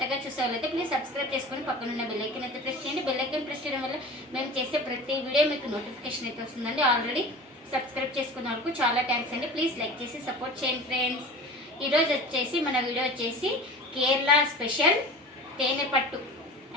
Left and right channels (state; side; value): normal; both; correlation 0.36